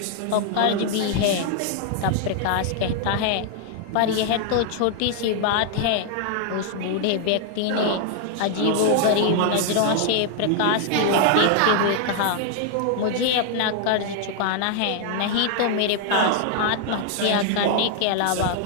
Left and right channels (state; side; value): different; both; correlation 0.00